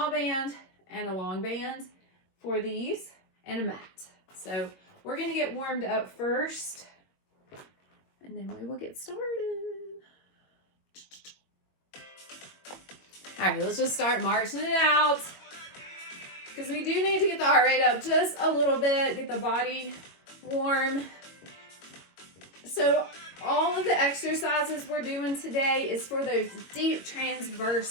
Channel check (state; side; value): late; right; 22 ms